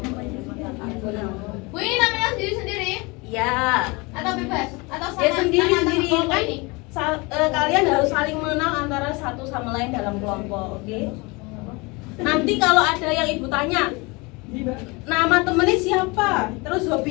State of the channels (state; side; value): quieter; right; 26.4 dB